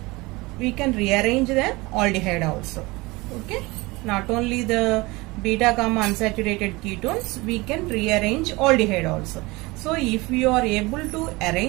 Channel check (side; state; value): left; quieter; 22.9 dB